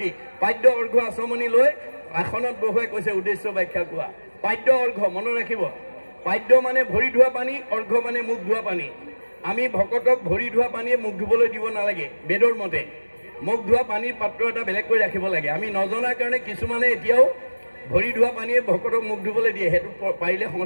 পাদ্য অৰ্ঘ্য আচমনি লৈ আসনত বহুৱাই কৈছে উদ্দেশ্য ব্যাখ্যা কোৱা পাদ্য অৰ্ঘ্য মনত ৰাখিব পাদ্য মানে ভৰি ধোৱা পানী অৰ্ঘ্য মানে মুখ ধোৱা পানী আমি ভকতক ভৰি ধোৱা পানীয়ে মুখ ধুবলৈ দিব নালাগে বেদৰ মতে মুখ ধোৱা পানীৰ পাত্ৰ এটা বেলেগকৈ ৰাখিব লাগে আমি নজনাৰ কাৰণে কিছুমানে এতিয়াও ভৰি ধোৱা পানীয়ে ভকতক মুখ ধুবলৈ দিয়ে সেইটো পাৰিলে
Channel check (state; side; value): inverted; both; correlation -1.00